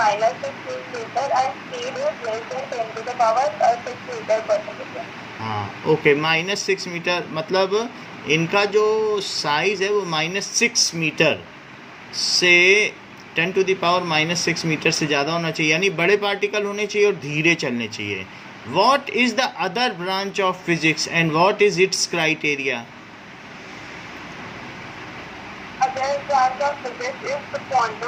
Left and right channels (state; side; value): identical; both; correlation 1.00